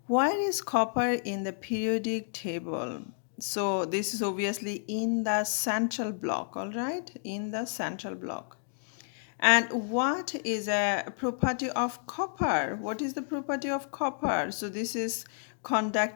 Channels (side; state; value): right; silent; 57 dB below the other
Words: Why is copper in the periodic table? So this is obviously in the central block. All right, in the central block. And what is a property of copper? What is the property of copper? So this is